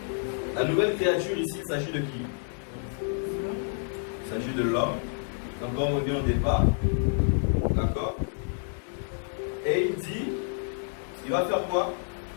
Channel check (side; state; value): right; silent; digital silence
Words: La nouvelle créature ici, il s'agit de qui? Il s'agit de l'homme. Donc comme on dit au départ, d'accord? Et il dit, il va faire quoi?